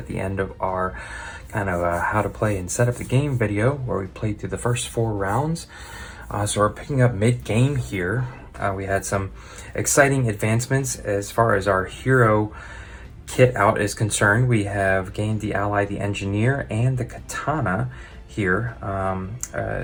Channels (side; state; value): both; identical; correlation 1.00